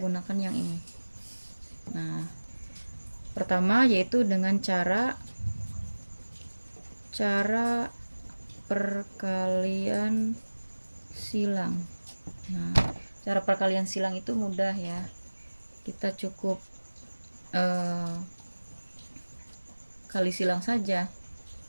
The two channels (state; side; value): inverted; both; correlation -1.00